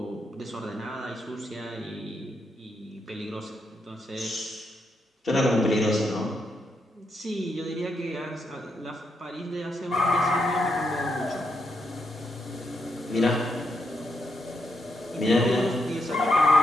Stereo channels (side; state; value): both; normal; correlation 0.80